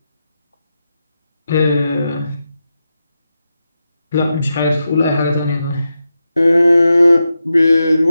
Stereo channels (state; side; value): inverted; both; correlation -0.89